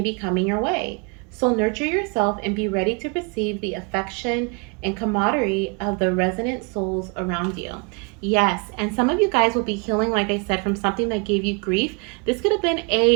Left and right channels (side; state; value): left; quieter; 33.3 dB